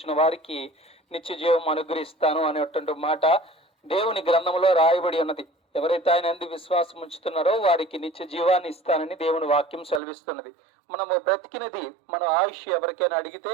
వారికి నిత్య జీవం అనుగ్రహిస్తాను అనేటువంటి మాట దేవుని గ్రంథంలో రాయబడి ఉన్నది. ఎవరైతే ఆయన యందు విశ్వాసం ఉంచుతున్నారో వారికి నిత్య జీవాన్ని ఇస్తానని దేవుని వాక్యం సెలవిస్తున్నది. మనము బ్రతికినది మన ఆయుష్ ఎవరికైనా అడిగితే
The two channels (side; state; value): left; drops out; at 10.0 s